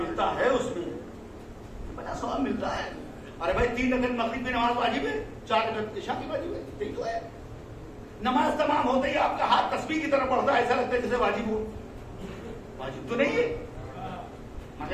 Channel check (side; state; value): both; identical; correlation 1.00